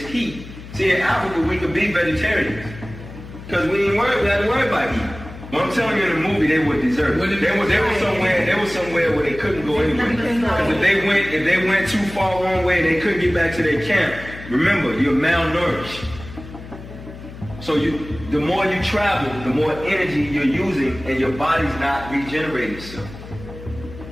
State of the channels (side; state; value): left; noise; hum, 14 dB below the sound